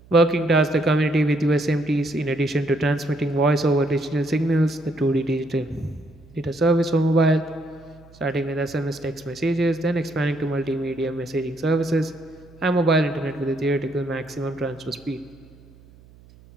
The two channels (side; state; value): right; noise; hum, 25 dB below the sound